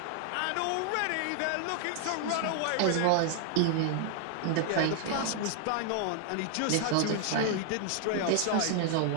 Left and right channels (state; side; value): different; both; correlation 0.00